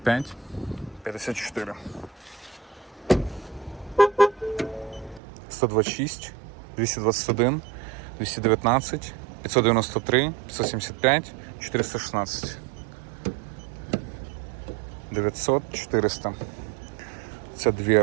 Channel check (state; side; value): drops out; left; at 5.2 s